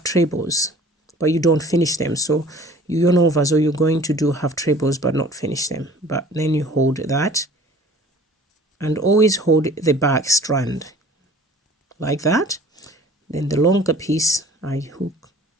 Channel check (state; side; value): normal; both; correlation 0.48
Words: trebles, but you don't finish them. So you yarn over, so you're going to do half trebles but not finish them. But then you hold that and always hold the back strand like that. Then the longer piece I hook